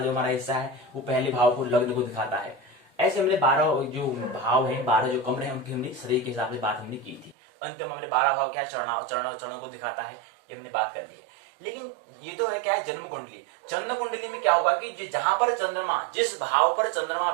हमारा हिस्सा है, वो पहले भाव को लग्न को दिखाता है। ऐसे हमने 12 जो भाव हैं, 12 जो कमरे हैं, उनकी हमने शरीर के हिसाब से बात हमने की थी। अंत में हमने 12 भाव क्या चरणों को दिखाता है, ये हमने बात कर ली है। लेकिन ये तो है क्या है, जन्म कुंडली। चंद्र कुंडली में क्या होगा कि जहां पर चंद्रमा, जिस भाव पर चंद्रमा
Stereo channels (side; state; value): left; drops out; at 7.4 s